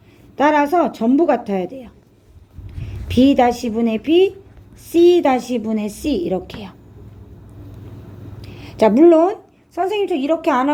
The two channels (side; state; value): both; identical; correlation 1.00